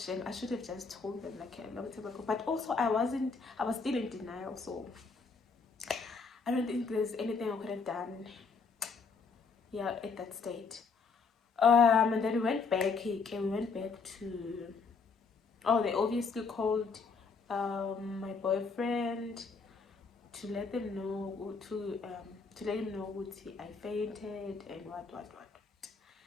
I should have just told them like a long time ago. But also I was still in denial, so I don't think there's anything I could have done, yeah, at that state. And then we went back to, oh, they obviously called my boyfriend to let them know, to let him know what I fainted and what.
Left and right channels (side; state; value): right; quieter; 4.9 dB